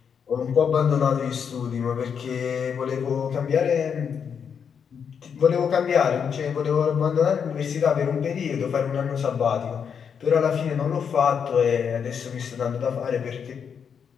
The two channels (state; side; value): quieter; right; 7.1 dB